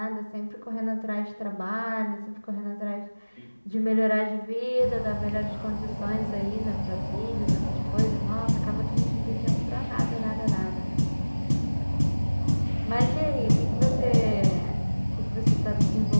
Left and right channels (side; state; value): both; inverted; correlation -1.00